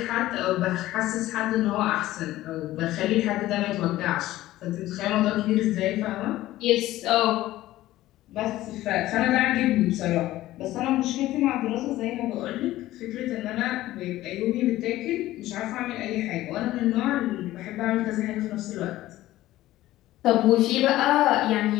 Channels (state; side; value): quieter; right; 15.6 dB